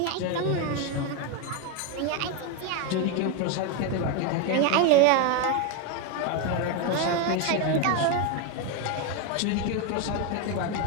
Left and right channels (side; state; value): both; different; correlation 0.02